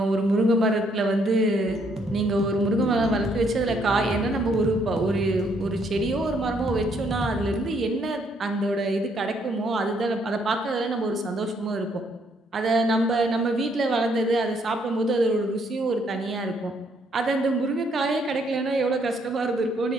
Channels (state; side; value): normal; both; correlation 0.70